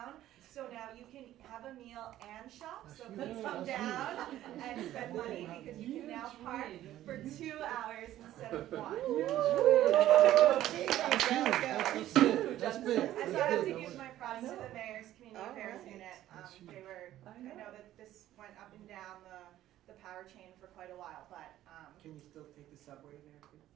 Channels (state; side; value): quieter; left; 13.4 dB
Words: So now you can have a meal and shop, so please come down and spend money because you can now park for 2 hours instead of 1. That's big. And so I have to give my props to the mayor's community affairs unit. I know that this went up and down the power chain for quite a while, but Can you still take the subway there?